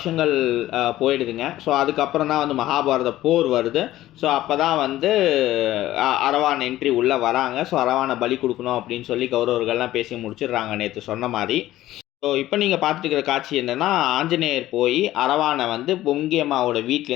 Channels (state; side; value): quieter; right; 14.8 dB